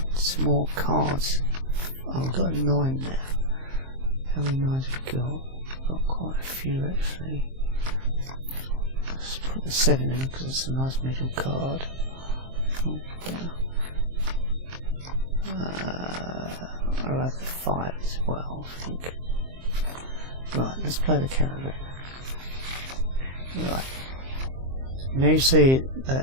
some more cards. Oh, I've got 9 now. How many 9s we got? Got quite a few actually. Let's put the 7 in because it's a nice middle card. Oh, yeah. I'll have the 5 as well, I think. Right, let's play the Caravan. Right. Now you see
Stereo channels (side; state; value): left; late; 23 ms